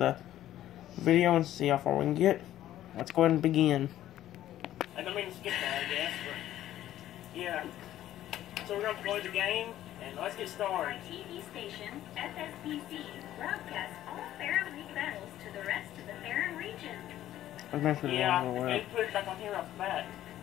video and see how far we can get. Let's go ahead and begin. I don't mean to skip that, I guess, but yeah. So we're going to play the game, and let's get started. TV station, FSBC, broadcasts all Fair League battles to the rest of the Fair region. Yeah, they put it back on here off the bat.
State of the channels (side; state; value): right; quieter; 12.9 dB